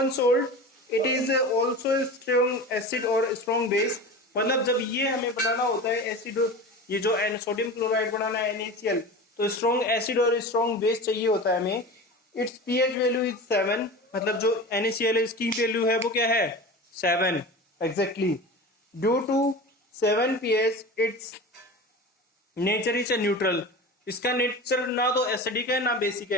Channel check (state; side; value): normal; both; correlation 0.32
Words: salt, it is also strong acid और स्ट्रॉन्ग बेस। मतलब जब ये हमें बनाना होता है एसिड, ये जो सोडियम क्लोराइड बनाना है NaCl, तो स्ट्रॉन्ग एसिड और स्ट्रॉन्ग बेस चाहिए होता है हमें। इट्स pH वैल्यू इज 7, मतलब जो NaCl है इसकी वैल्यू है वो क्या है, 7 exactly. Due to 7 pH it's nature is neutral. इसका नेचर ना तो एसिडिक है ना बेसिक